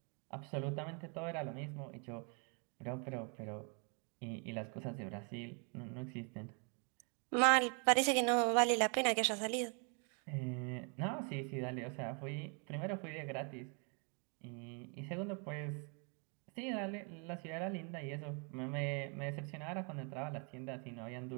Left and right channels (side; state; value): left; quieter; 38.7 dB